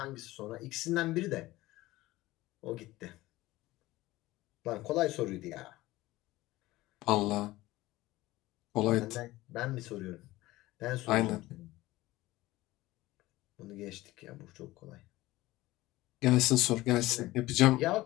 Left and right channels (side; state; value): right; quieter; 18.1 dB